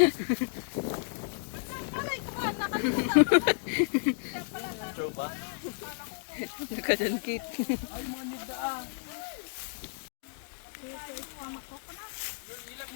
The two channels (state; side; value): silent; right; digital silence